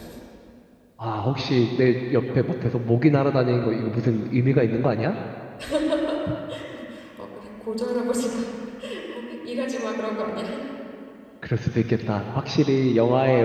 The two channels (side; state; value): both; identical; correlation 1.00